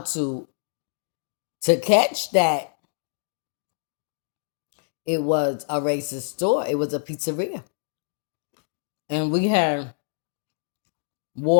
to catch that it was a racist store. It was a pizzeria. And we had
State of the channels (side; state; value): right; silent; digital silence